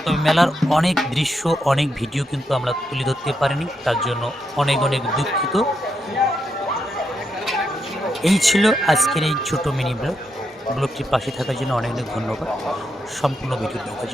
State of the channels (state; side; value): normal; both; correlation 0.82